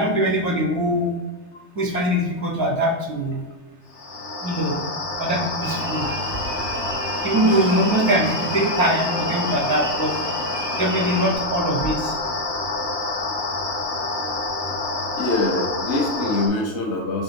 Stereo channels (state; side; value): late; right; 3.3 ms